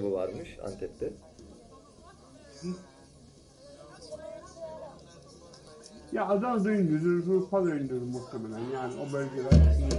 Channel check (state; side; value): identical; both; correlation 1.00